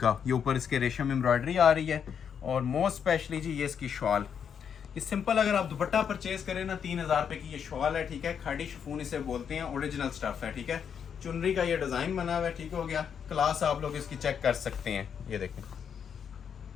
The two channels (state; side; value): quieter; right; 7.6 dB